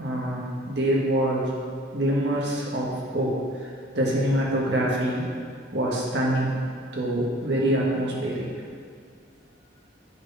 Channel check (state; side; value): normal; both; correlation 0.49